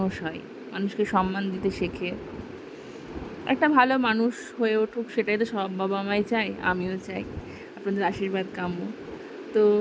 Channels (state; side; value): identical; both; correlation 1.00